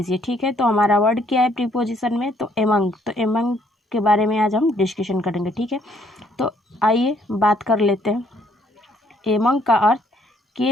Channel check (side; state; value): both; normal; correlation 0.66